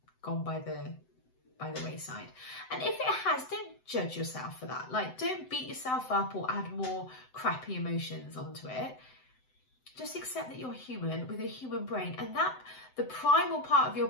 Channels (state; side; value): late; right; 7.8 ms